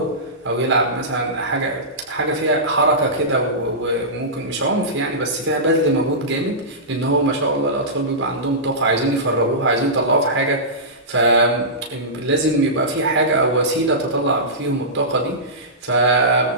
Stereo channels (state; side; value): normal; both; correlation -0.17